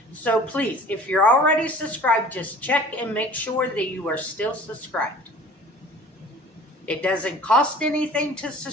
So please, if you're already subscribed, just check and make sure that you are still subscribed. It doesn't cost anything to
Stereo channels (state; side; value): normal; both; correlation 0.46